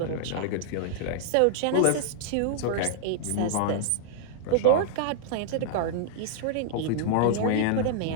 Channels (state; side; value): different; both; correlation -0.01